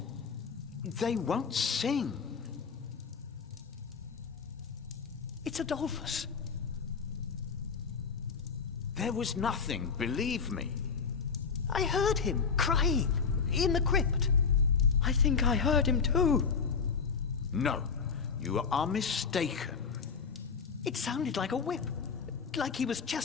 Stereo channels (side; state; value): right; quieter; 5.6 dB